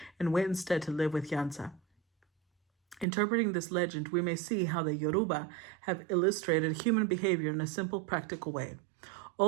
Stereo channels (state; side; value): drops out; left; at 3.1 s